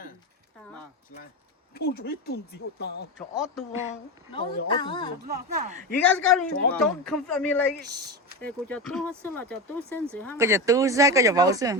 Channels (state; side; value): normal; both; correlation 0.19